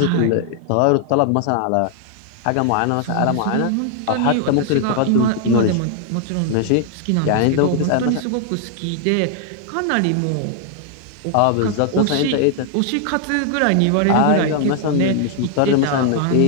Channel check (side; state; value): both; different; correlation 0.00